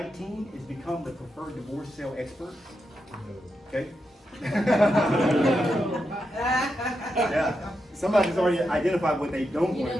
is become the preferred divorce sale expert. Okay? Yeah. Somebody's already identified what they don't You want know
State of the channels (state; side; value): normal; both; correlation 0.86